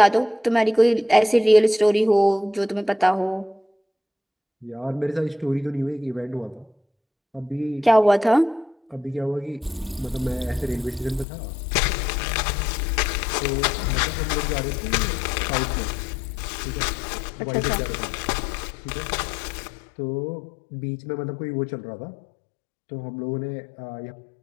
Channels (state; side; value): drops out; right; at 11.2 s